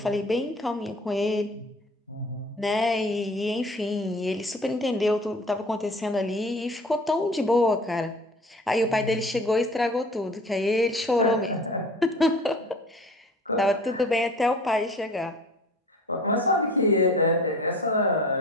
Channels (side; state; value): both; normal; correlation 0.45